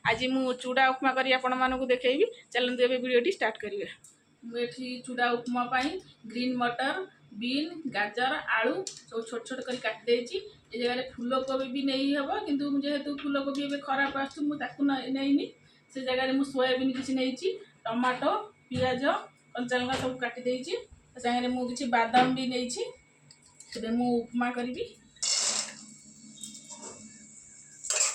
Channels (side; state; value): both; identical; correlation 1.00